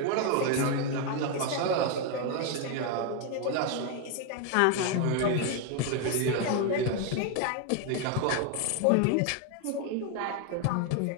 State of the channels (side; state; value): both; different; correlation 0.01